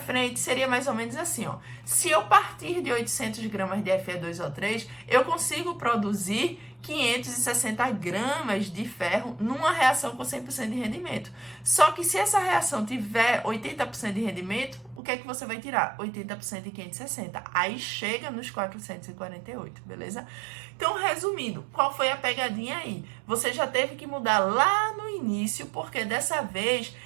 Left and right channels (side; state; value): left; drops out; at 15.0 s